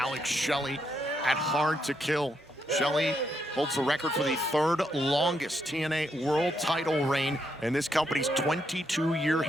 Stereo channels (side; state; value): both; normal; correlation 0.78